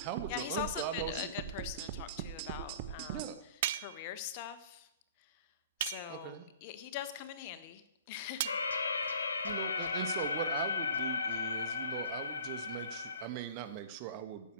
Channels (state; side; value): inverted; both; correlation -0.43